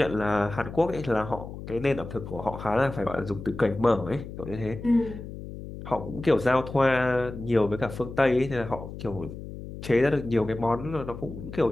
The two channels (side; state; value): left; noise; hum, 11 dB below the sound